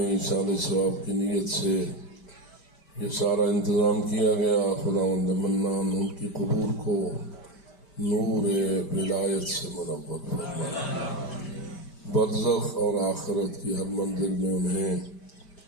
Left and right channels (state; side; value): late; right; 5.1 ms